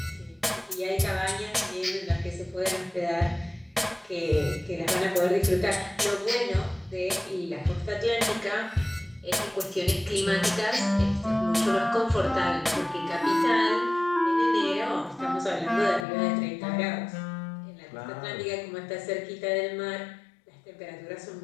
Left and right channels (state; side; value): drops out; right; at 16.1 s